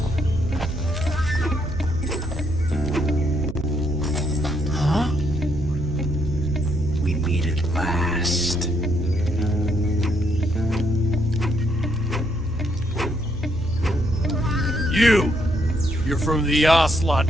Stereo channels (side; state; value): right; noise; hum, 11 dB below the sound